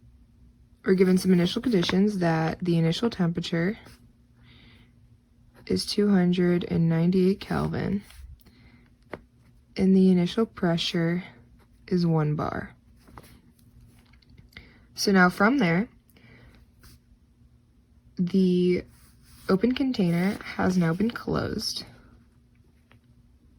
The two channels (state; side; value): identical; both; correlation 1.00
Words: some initial conditions that the initial temperature is 298 Kelvin and the initial pressure is 1 bar. So now from there, the open container has now been closed.